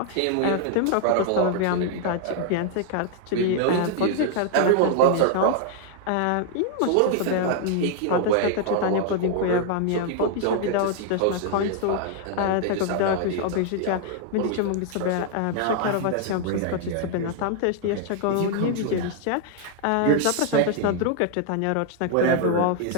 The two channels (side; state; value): both; different; correlation 0.00